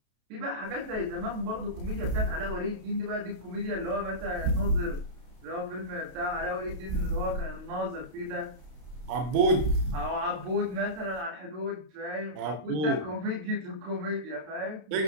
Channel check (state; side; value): late; left; 32 ms